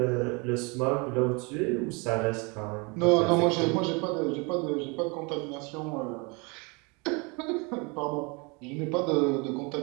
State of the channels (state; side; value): quieter; left; 30.1 dB